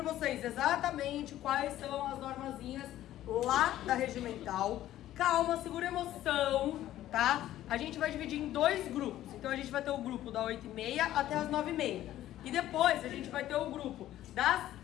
vocês exatamente quais são as normazinhas lá da regimental. Calma, segura a emoção, tá? A gente vai dividir em dois grupos. Então a gente vai ter o grupo da 8h30 até as 9h30. E depois a gente vai ter o grupo das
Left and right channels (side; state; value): right; quieter; 13.4 dB